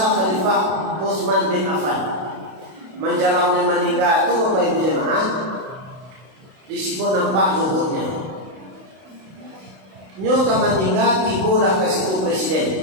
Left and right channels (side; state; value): left; late; 32 ms